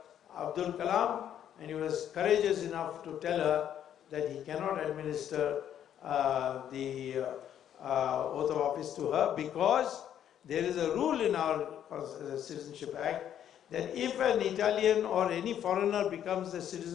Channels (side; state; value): right; quieter; 10.1 dB